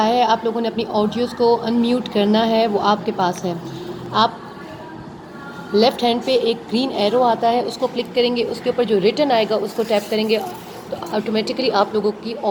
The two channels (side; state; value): both; identical; correlation 1.00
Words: ہے، آپ لوگوں نے اپنی آڈیوز کو ان میوٹ کرنا ہے، وہ آپ کے پاس ہے. آپ لیفٹ ہینڈ پہ ایک گرین ایرو آتا ہے، اس کو کلک کریں گے، اس کے اوپر جو ریٹن آئے گا اس کو ٹیپ کریں گے تو آٹومیٹکلی آپ لوگوں کی